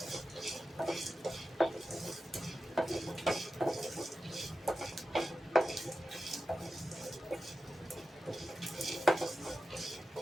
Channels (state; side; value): normal; both; correlation 0.92